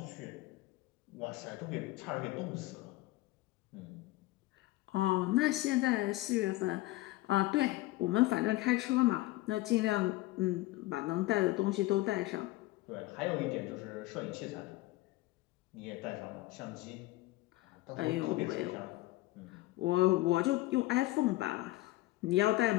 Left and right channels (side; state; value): right; quieter; 18.7 dB